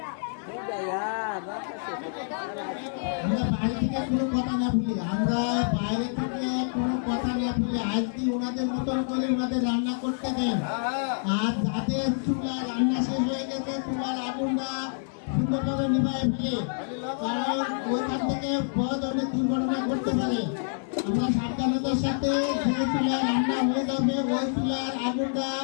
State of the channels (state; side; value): silent; right; digital silence